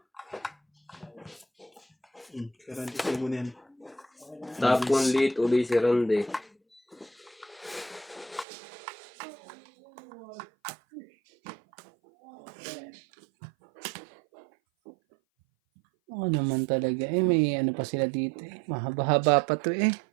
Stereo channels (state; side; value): drops out; left; at 8.5 s